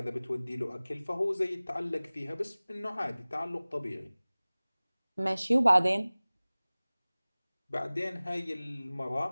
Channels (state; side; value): inverted; both; correlation -0.99